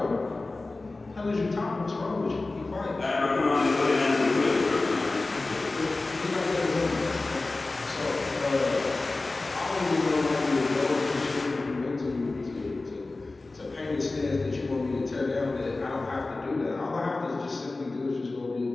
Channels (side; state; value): right; quieter; 3.3 dB